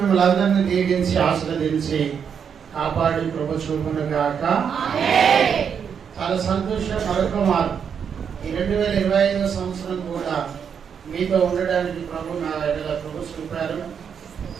అందరినీ దీవించి ఆశీర్వదించి కాపాడి ప్రభు చూపును గాక. చాలా సంతోషం. మరొక మారు ఈ 2025 సంవత్సరం కూడా మీతో ఉండడానికి ప్రభు నా ఎడల ప్రభు చూపారు.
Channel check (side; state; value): left; quieter; 7.3 dB